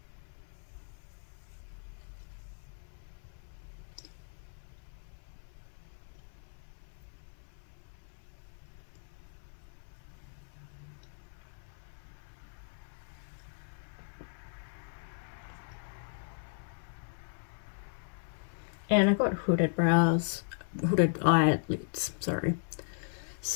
And I've got hooded brows, hooded eyelids, sorry.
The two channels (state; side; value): silent; right; 53 dB below the other